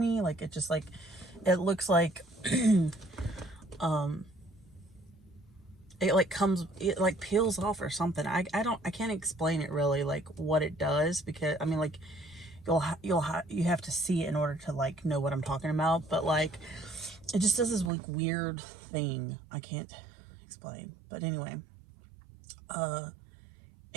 like it just like, it looks like it like comes, it like peels off or something. I can't explain it really, like what it does, because I mean like you have to see it in order to like know what I'm talking about, but like it just does this like weird thing I can't explain. But anyway,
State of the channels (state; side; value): drops out; left; at 17.9 s